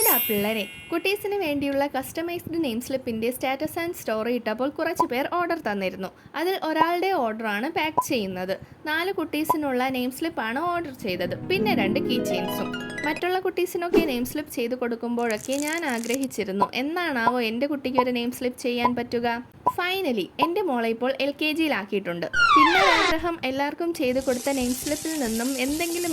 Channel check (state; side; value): identical; both; correlation 1.00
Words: എന്താ പിള്ളേരെ, കുട്ടീസിന് വേണ്ടിയുള്ള കസ്റ്റമൈസ്ഡ് നെയിം സ്ലിപ്പിൻ്റെ സ്റ്റാറ്റസ് ആൻഡ് സ്റ്റോറി ഇട്ടപ്പോൾ കുറച്ച് പേർ ഓർഡർ തന്നിരുന്നു. അതിൽ ഒരാളുടെ ഓർഡറാണ് പാക്ക് ചെയ്യുന്നത്. 4 കുട്ടീസിനുള്ള നെയിം സ്ലിപ്പാണ് ഓർഡർ ചെയ്തത്, പിന്നെ 2 കീ ചെയിൻസും. മറ്റുള്ള കുട്ടീസിനൊക്കെ നെയിം സ്ലിപ്പ് ചെയ്ത് കൊടുക്കുമ്പോഴൊക്കെ ഞാൻ ആഗ്രഹിച്ചിരുന്നു, എന്നാണാവോ എൻ്റെ കുട്ടിക്ക് ഒരു നെയിം സ്ലിപ്പ് ചെയ്യാൻ പറ്റുക. ഫൈനലി എൻ്റെ മോളെ ഇപ്പോൾ LKG-യിലാക്കിയിട്ടുണ്ട്. പിന്നെ ആഗ്രഹം എല്ലാവർക്കും ചെയ്തു കൊടുത്ത നെയിം സ്ലിപ്പിൽ നിന്നും എന്തെങ്കിലും